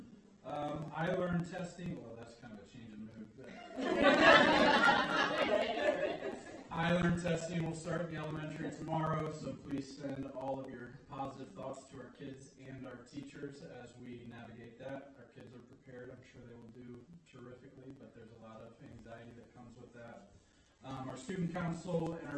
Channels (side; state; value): both; identical; correlation 1.00